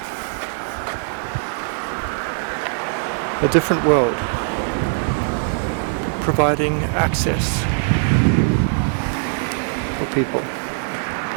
A different world, providing access for people.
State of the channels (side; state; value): left; silent; 65 dB below the other